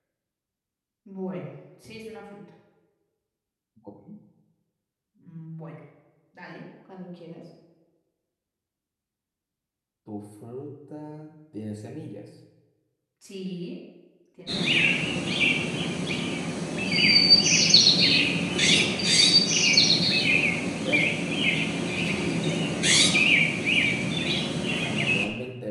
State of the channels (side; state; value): both; identical; correlation 1.00